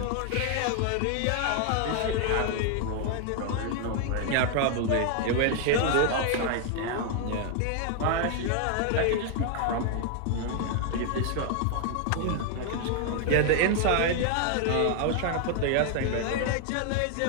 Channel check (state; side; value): different; both; correlation 0.00